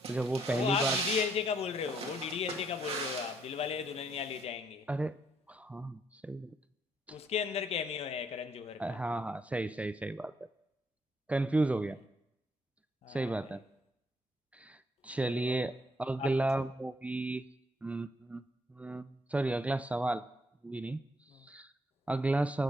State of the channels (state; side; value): normal; both; correlation 0.71